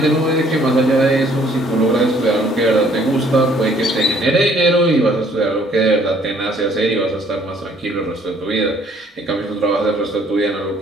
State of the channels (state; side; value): normal; both; correlation 0.61